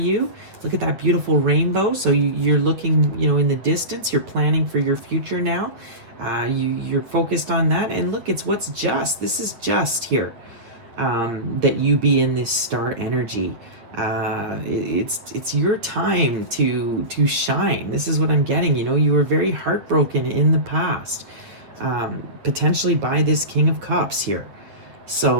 Look at that beautiful rainbow. So you're looking, you know, in the distance. You're planning for your future now. You're focused on that. And look, it's what's just. This is just here, that you be in this star energy. It's your time to shine. This is what I'm getting. You know, you were very heartbroken in the past, potentially by this King of Cups here.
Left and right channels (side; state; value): left; late; 8.7 ms